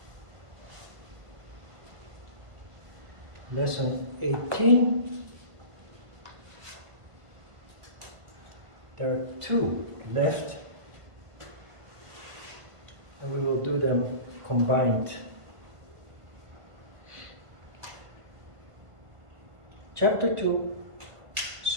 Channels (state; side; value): late; left; 1.5 ms